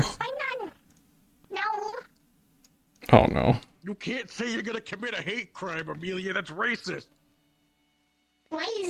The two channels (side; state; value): both; identical; correlation 1.00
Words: No, Oh no. You can't say you're gonna commit a hate crime, Amelia. That's racist. why